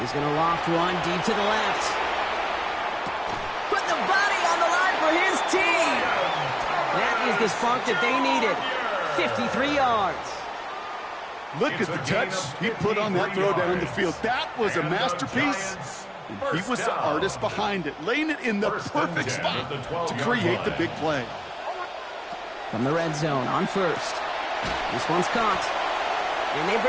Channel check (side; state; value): both; identical; correlation 1.00